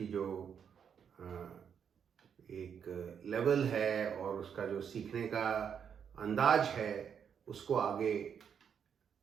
जो एक लेवल है और उसका जो सीखने का अंदाज है उसको आगे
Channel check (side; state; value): left; quieter; 7.6 dB